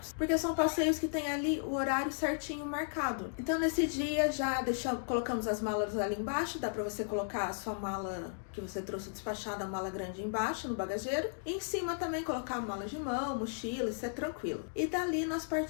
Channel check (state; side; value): silent; right; digital silence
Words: porque são passeios que tem ali o horário certinho marcado. Então, nesse dia, já colocamos as malas ali embaixo, dá pra você colocar a sua mala que você trouxe despachada, a mala grande embaixo, no bagageiro. E em cima também colocar a mala de mão, mochila, isso é tranquilo. E dali nós